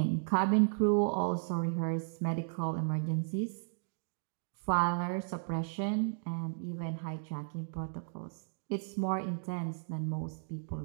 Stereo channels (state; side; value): silent; left; digital silence